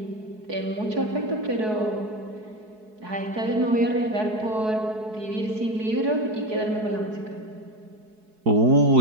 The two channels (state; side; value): late; left; 4.7 ms